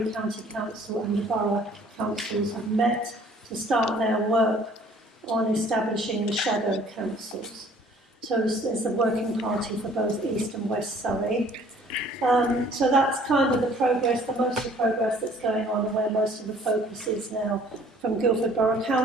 County Council and the Borough Councils have met to start their work on establishing the shadow councils. So there's the working party for both East and West Surrey. So that's kind of the progress, most of the progress that's going on and where most of the focus is now from Guildford Borough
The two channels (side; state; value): both; normal; correlation 0.55